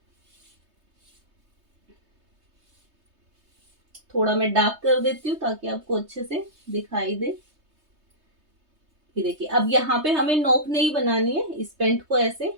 थोड़ा मैं डार्क कर देती हूँ ताकि आपको अच्छे से दिखाई दे। ये देखिए अब यहाँ पे हमें नोक नहीं बनानी है, इस पेंट को ऐसे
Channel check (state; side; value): late; left; 3.2 ms